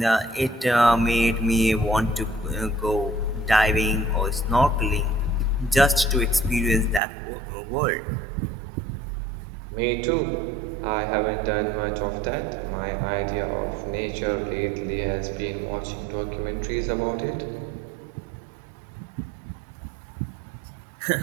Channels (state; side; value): drops out; left; at 7.0 s